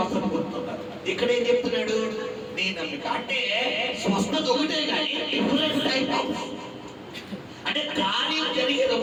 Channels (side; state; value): both; identical; correlation 1.00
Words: పొందుతున్నారు. ఇక్కడ ఏం చెప్తున్నాడు? నీ నమ్మిక. అంటే స్వస్థత ఒకటే కానీ డిఫరెంట్ టైప్ ఆఫ్, అంటే కార్యం జరిగేది